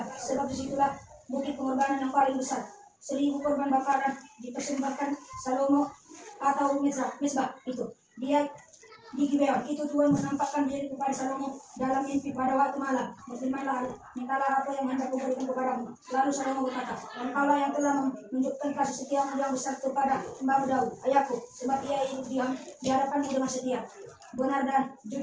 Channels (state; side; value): identical; both; correlation 1.00